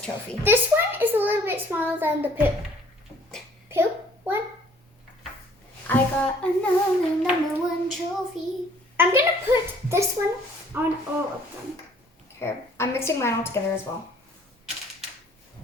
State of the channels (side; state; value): both; normal; correlation 0.57